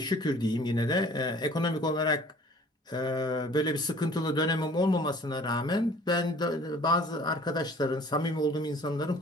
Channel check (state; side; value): normal; both; correlation 0.51